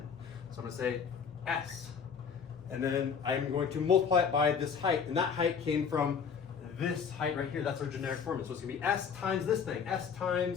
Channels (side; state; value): right; quieter; 6.6 dB